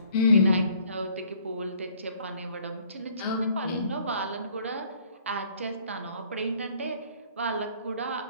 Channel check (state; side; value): inverted; both; correlation -0.59